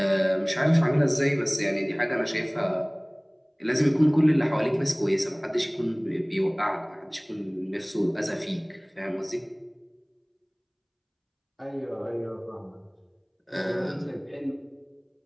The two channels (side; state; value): both; identical; correlation 1.00